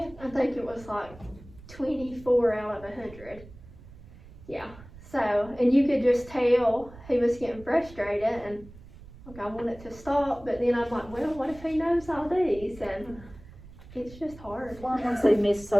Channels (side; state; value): right; noise; rumble, 19 dB below the sound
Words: I think it was, like, 24 out of 100. Yeah. So, and you could just tell he was getting frustrated, and like I wanted to stop, but then I'm like, well, what if he knows all these? And it's just hard. Well, once they miss